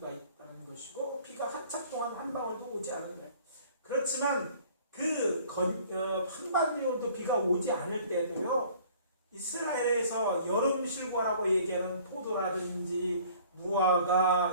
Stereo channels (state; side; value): inverted; both; correlation -0.53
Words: 있다는 것이고 비가 한참 동안 한 방울도 오지 않은 거예요. 그렇지만 한 방울도 비가 오지 않을 때도요 이스라엘에서 여름 실과라고 얘기하는 포도라든지 무화과